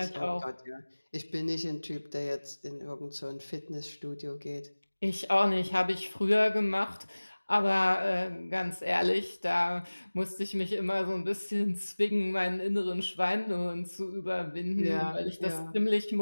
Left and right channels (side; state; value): both; inverted; correlation -1.00